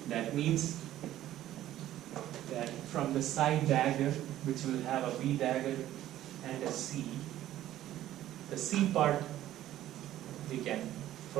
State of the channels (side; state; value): left; quieter; 13.3 dB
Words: That means that from the psi dagger, which will have a B dagger and a C, the C part we can